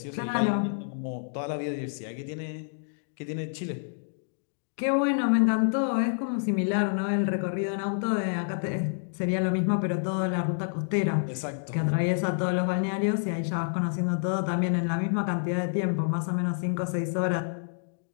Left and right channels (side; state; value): right; silent; digital silence